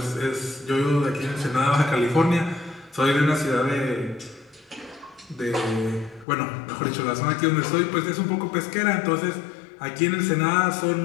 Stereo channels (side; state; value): right; drops out; at 6.2 s